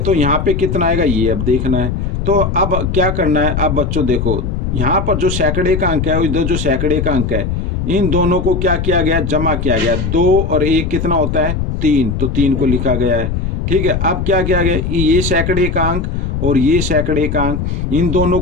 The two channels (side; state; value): left; noise; rumble, 2 dB below the sound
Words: यहाँ पे कितना आएगा ये अब देखना है। तो अब क्या करना है, अब बच्चों देखो यहाँ पर जो सैकड़े का अंक है, इधर जो सैकड़े का अंक है, इन दोनों को क्या किया गया, जमा किया गया। 2 और 1 कितना होता है, 3, तो 3 को लिखा गया है। ठीक है, अब क्या किया गया, ये सैकड़े का अंक और ये सैकड़े का अंक, इन दोनों